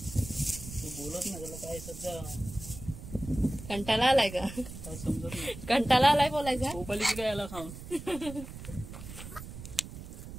बोलत नाही. त्याला काय सध्या कंटाळा आलाय का? काय समजत नाही. कंटाळा आलाय बोलायचा. भोपालीची काय याला खाऊन.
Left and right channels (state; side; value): noise; right; rumble, 12 dB below the sound